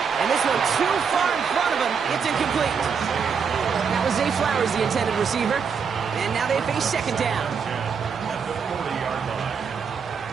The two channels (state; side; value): quieter; left; 6.3 dB